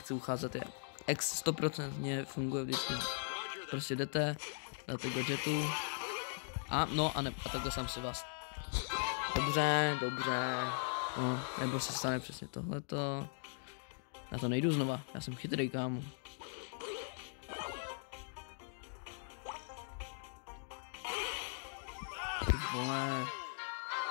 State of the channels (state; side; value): silent; right; digital silence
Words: ucházet, je X 100% funguje vždycky. Prostě jdete, dáte gadgetu a takhle sám si vás. Dobře. No, nebo se stane přesně tohleto. Já to nejdu znova, já jsem chytrý, kámo. Ty vole.